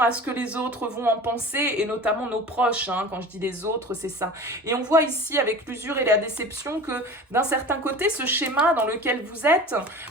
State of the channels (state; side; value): normal; both; correlation 0.37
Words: ce que les autres vont en penser, et notamment nos proches, hein, quand je dis les autres, c'est ça. Et on voit ici, avec l'usure et la déception, que d'un certain côté, ce schéma dans lequel vous êtes,